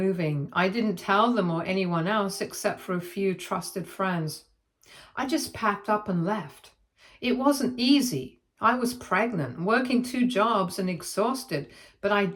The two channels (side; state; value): both; identical; correlation 1.00